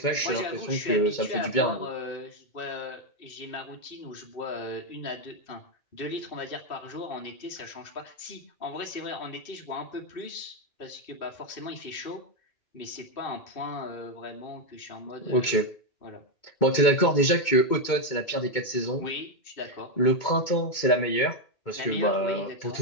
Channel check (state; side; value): late; right; 2.2 ms